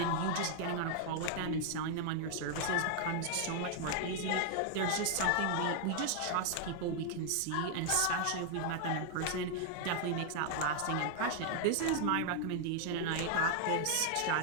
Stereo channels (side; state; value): both; different; correlation 0.00